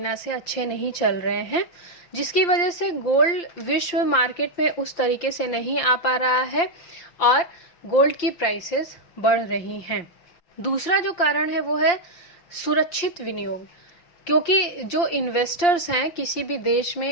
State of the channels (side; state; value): right; late; 5.8 ms